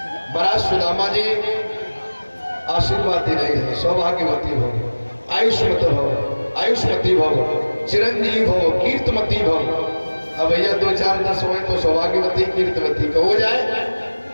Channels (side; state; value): both; inverted; correlation -1.00